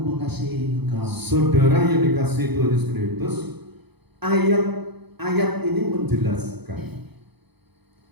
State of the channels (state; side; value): late; left; 0.98 ms